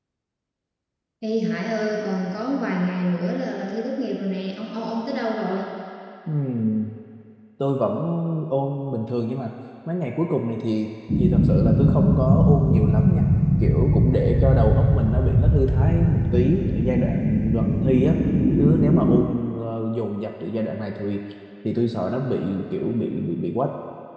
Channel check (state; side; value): identical; both; correlation 1.00